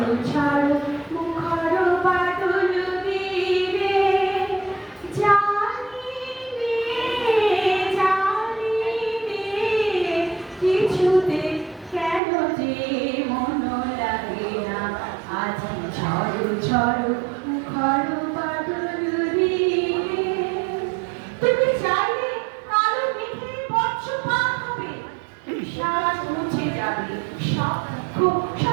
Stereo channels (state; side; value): drops out; left; at 12.2 s